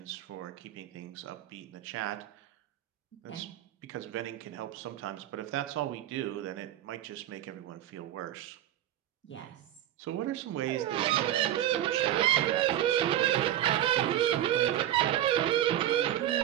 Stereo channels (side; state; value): left; quieter; 12.3 dB